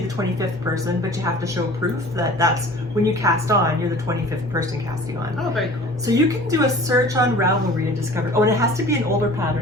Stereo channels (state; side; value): normal; both; correlation 0.45